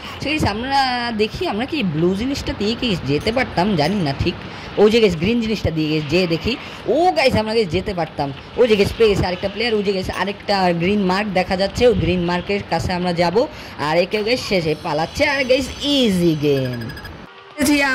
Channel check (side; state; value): both; identical; correlation 1.00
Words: সে গাইস আমরা দেখি আমরা কি ব্লু জিনিসটা দিয়ে কি যেতে পারতাম জানি না ঠিক। ওই যে গাইস গ্রিন জিনিসটা দিয়ে গেছে যে দেখি, ও গাইস আমরা গাইস যেতে পারতাম। ওই যে গাইস পেয়ে গেছে আরেকটা প্লেয়ার। ওই যে গাইস আরেকটা গ্রিন মার্ক দেখা যাচ্ছে, ওই গ্রিন মার্কের কাছে আমরা যাব। আর একেও গাইস শেষে পালাচ্ছে। আর গাইস ইজি গেম